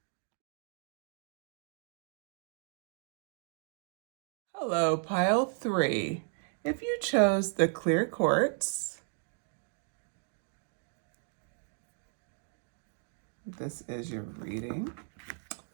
Hello, pile 3. If you chose the clear quartz, this is your reading,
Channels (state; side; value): silent; left; 55 dB below the other